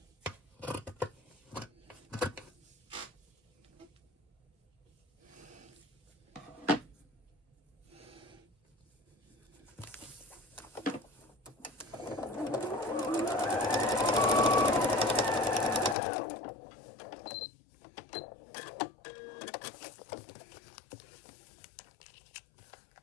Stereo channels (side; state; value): right; drops out; at 16.0 s